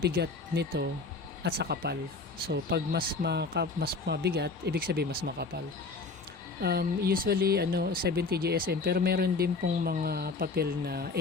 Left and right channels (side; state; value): right; quieter; 4.0 dB